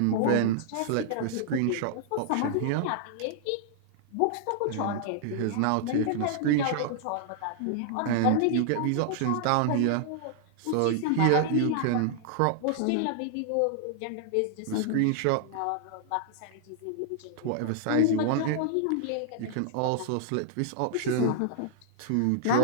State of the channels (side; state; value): both; different; correlation -0.01